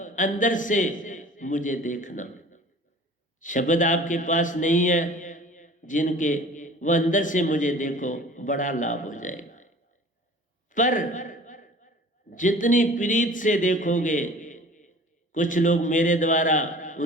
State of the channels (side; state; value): both; normal; correlation 0.45